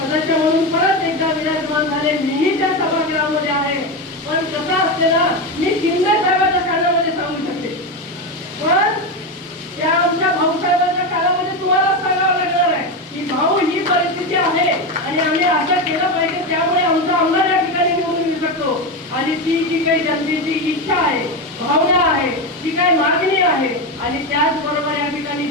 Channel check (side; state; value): both; normal; correlation 0.14